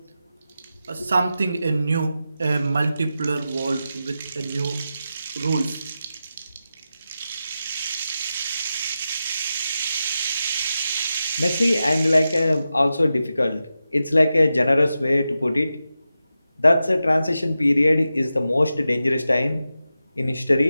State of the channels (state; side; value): inverted; both; correlation -0.91